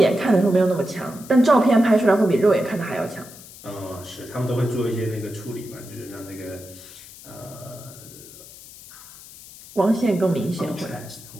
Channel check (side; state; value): left; noise; hiss, 18 dB below the sound